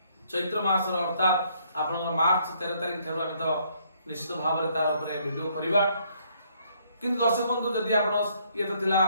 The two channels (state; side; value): inverted; both; correlation -0.68